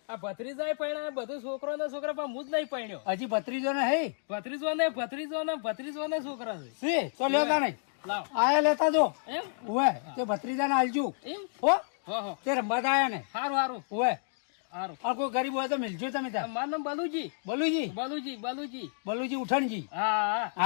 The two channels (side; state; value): right; silent; digital silence